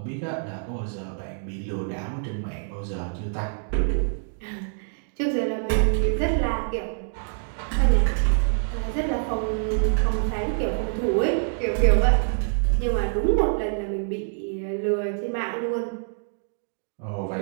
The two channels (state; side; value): silent; left; digital silence